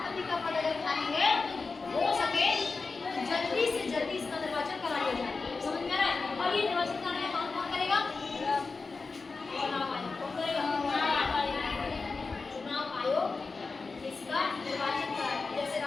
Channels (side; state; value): right; quieter; 4.2 dB